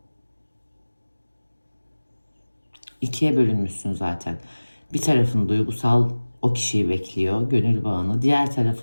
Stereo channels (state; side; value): inverted; both; correlation -1.00